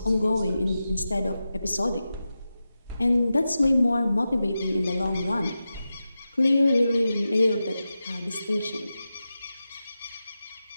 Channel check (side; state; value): both; inverted; correlation -0.92